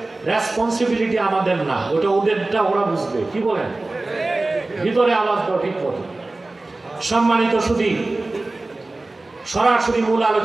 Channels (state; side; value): quieter; left; 3.1 dB